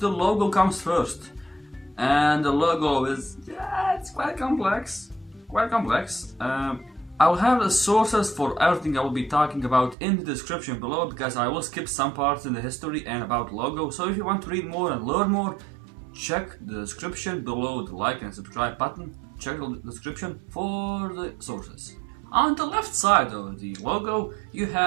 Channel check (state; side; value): drops out; left; at 10.0 s